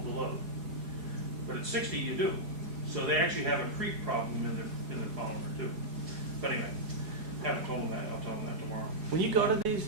the load. But at 60, you do. So they actually have a creep problem in the polymer too. But anyway, haven't told them that. I'll tell them that tomorrow. When you go to these,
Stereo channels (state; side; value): late; left; 4.8 ms